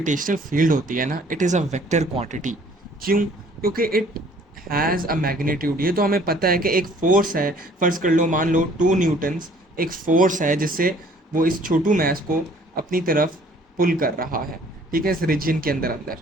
फील्ड होती है ना, it is a vector quantity. क्यों? क्योंकि इट हैज़ अ मैग्नीट्यूड। ये तो हमें पता है कि एक फोर्स है। फ़र्ज़ कर लो, मान लो 2 न्यूटन्स एक फ़ोर्स है जिससे वो इस छोटू मैस को अपनी तरफ पुल कर रहा है। ठीक है, इस रीजन के अंदर अंदर।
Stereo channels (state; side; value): normal; both; correlation 0.56